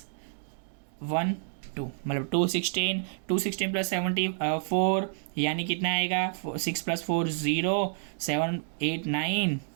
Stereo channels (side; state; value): left; silent; digital silence